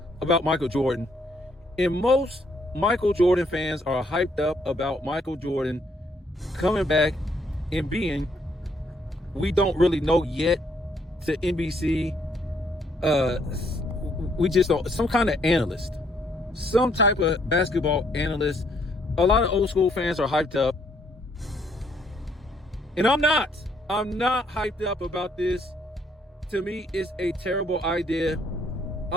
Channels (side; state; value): both; normal; correlation 0.69